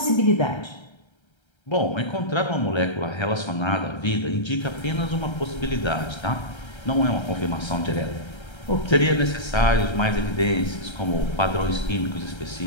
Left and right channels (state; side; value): late; right; 1.3 ms